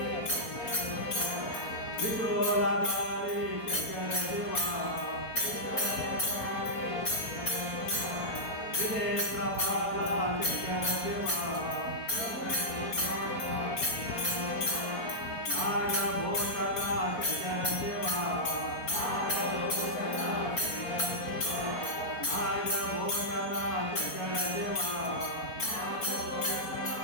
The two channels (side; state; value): right; late; 4.2 ms